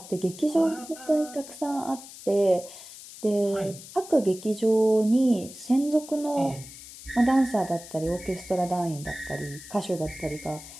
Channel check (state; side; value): noise; left; hiss, 16 dB below the sound